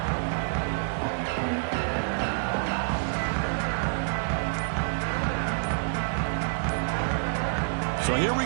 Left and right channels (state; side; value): silent; left; digital silence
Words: So here we